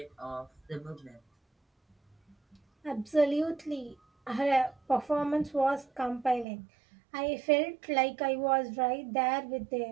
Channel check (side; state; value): left; drops out; at 6.5 s